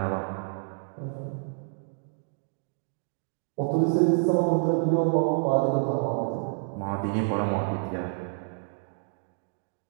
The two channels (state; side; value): silent; left; 59 dB below the other